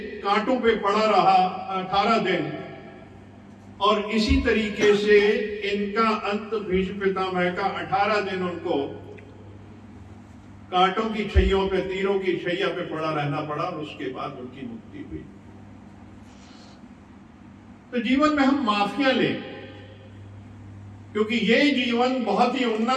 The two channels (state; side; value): identical; both; correlation 1.00